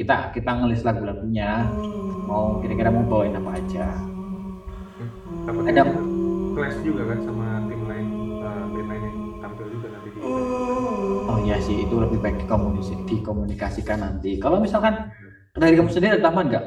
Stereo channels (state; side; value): identical; both; correlation 1.00